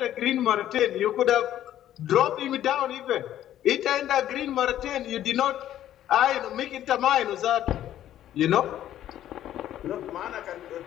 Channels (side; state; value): right; quieter; 12.0 dB